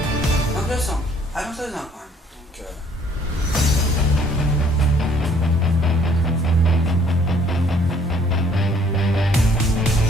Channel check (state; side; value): normal; both; correlation 0.61